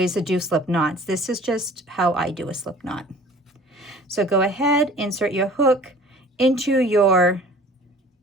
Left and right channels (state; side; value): normal; both; correlation 0.46